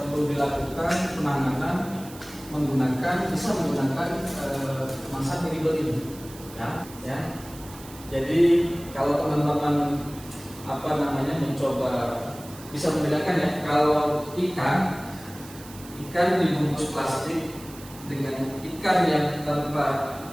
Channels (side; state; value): right; noise; hiss, 18 dB below the sound